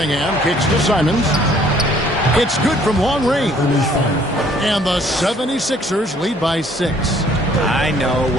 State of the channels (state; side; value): normal; both; correlation 0.60